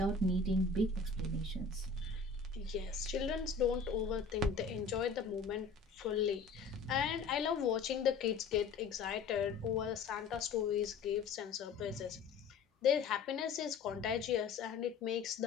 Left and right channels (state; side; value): quieter; right; 4.8 dB